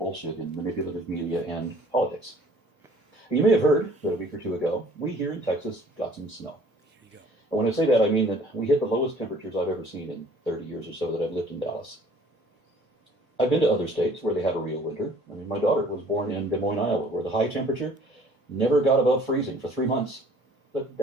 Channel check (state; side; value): normal; both; correlation 0.54